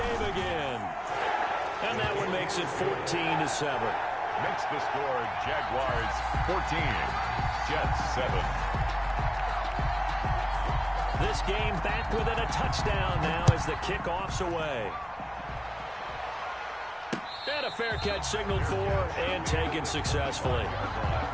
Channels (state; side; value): identical; both; correlation 1.00